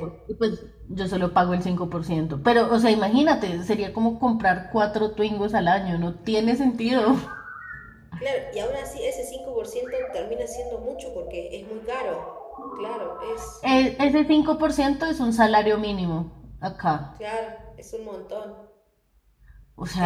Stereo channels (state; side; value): identical; both; correlation 1.00